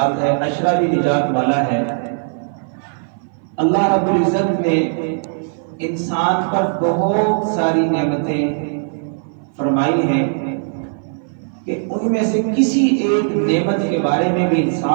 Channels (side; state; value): left; silent; 59 dB below the other